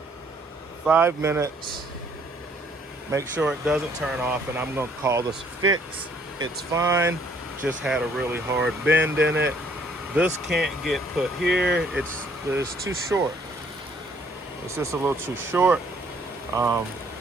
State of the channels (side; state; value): both; normal; correlation 0.63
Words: 5 minutes. Make sure it doesn't turn off, and I'm gonna call this a fix. It's fine, just had a really hard bend in it. This can't get put here. It's too short. It's just a little too short. But